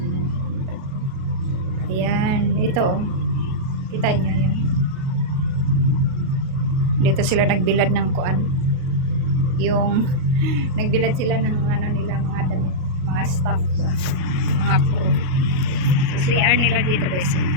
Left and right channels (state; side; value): late; left; 38 ms